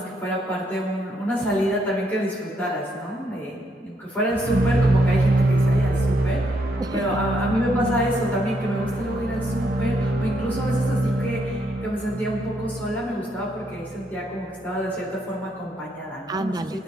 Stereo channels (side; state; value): both; normal; correlation 0.75